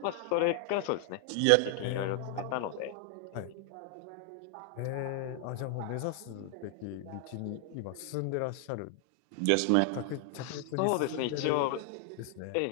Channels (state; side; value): different; both; correlation 0.00